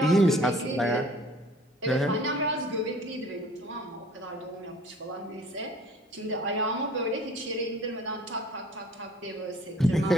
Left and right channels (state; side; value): normal; both; correlation 0.51